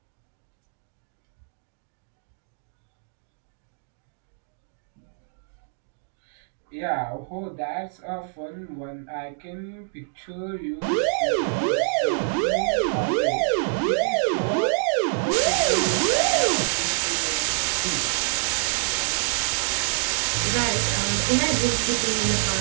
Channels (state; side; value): silent; left; digital silence